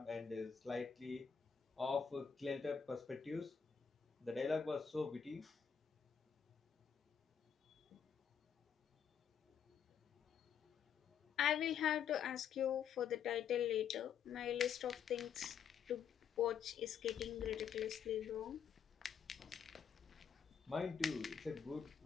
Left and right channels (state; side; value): quieter; right; 7.5 dB